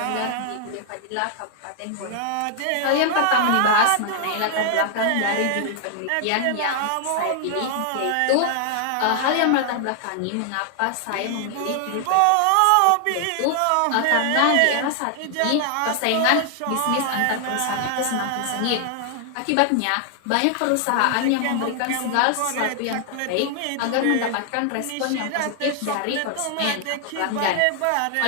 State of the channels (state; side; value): different; both; correlation 0.00